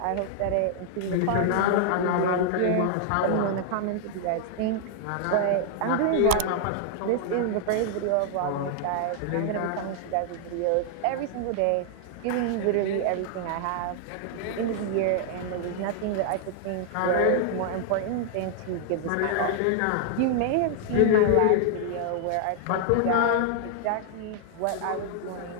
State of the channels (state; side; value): different; both; correlation -0.01